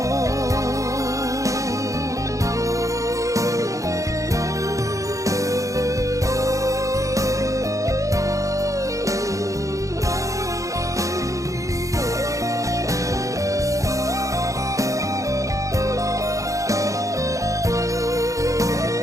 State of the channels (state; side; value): late; left; 0.16 ms